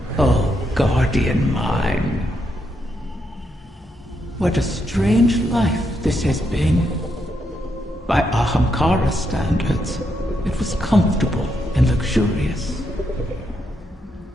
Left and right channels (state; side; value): normal; both; correlation 0.80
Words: Oh, guardian mine. What a strange life this has been. By Ahamkara standards, it was comfortable and luxurious.